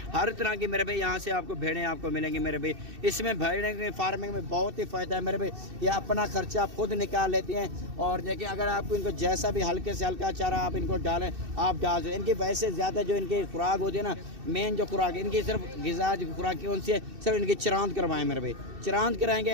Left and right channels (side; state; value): left; late; 2.6 ms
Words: हर तरह की मेरे भाई यहाँ से आपको भेड़ें आपको मिलेंगी मेरे भाई। इसमें भेड़ों की फार्मिंग में बहुत ही फ़ायदा है मेरे भाई। ये अपना खर्चा खुद निकाल लेती हैं। और देखिए अगर आपको इनको जैसा भी हल्के से हल्का चारा आप इनको डालें, आप डाल दें। इनकी वैसे ज़्यादा जो इनकी खुराक होती है ना, मेन जो खुराक इनकी सिर्फ ग़िज़ा जो खुराक कौन सी है, सिर्फ इनकी चरांद करवाएं मेरे भाई। चरांद कराएंगे